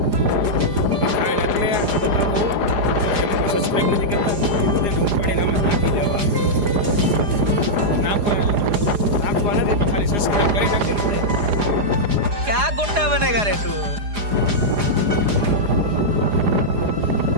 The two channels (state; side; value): late; left; 4.9 ms